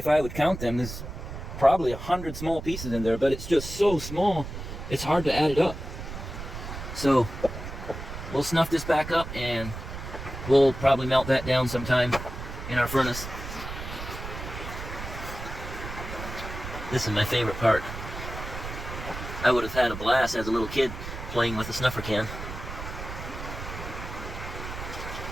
I would count them, there's probably 100 small pieces in there, but it's just so small, it's hard to add it up. So, we'll snuff this back up and we'll probably melt that down sometime in our furnace. This is my favorite part. I would have had a blast as a little kid playing with a snuffer can.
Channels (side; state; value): right; noise; rumble, 9 dB below the sound